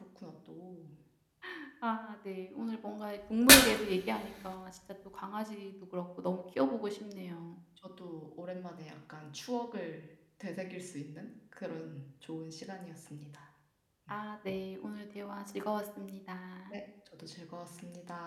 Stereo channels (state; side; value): identical; both; correlation 1.00